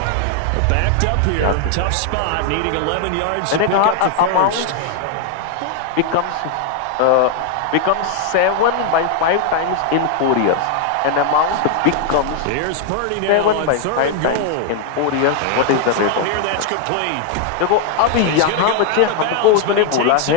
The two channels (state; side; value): different; both; correlation 0.00